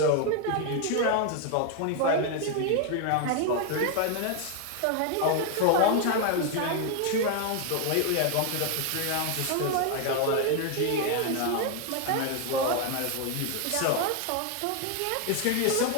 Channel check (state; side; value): different; both; correlation 0.00